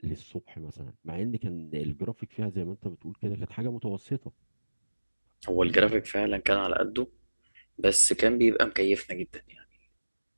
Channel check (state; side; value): inverted; both; correlation -1.00